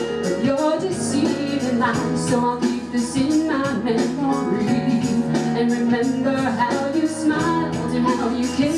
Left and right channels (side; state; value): both; identical; correlation 1.00